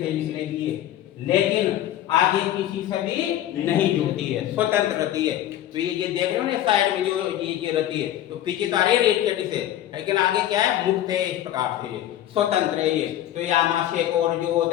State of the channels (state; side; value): quieter; right; 12.4 dB